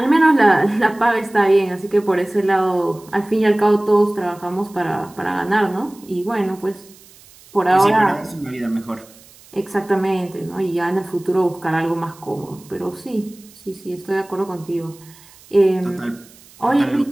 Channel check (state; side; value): noise; right; hiss, 25 dB below the sound